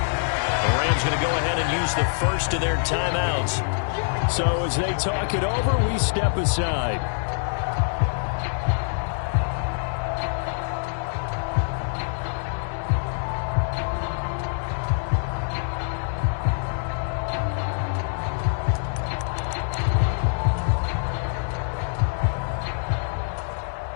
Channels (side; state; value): right; silent; digital silence